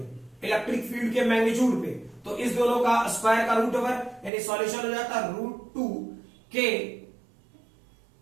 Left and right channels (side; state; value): left; drops out; at 4.3 s